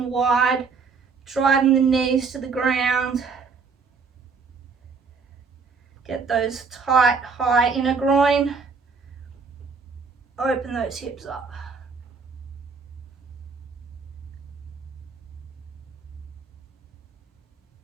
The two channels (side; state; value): left; quieter; 5.0 dB